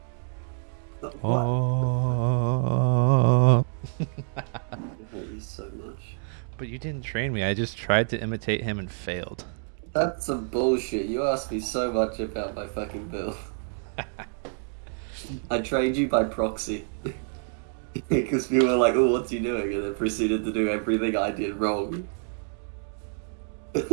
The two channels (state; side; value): silent; left; 57 dB below the other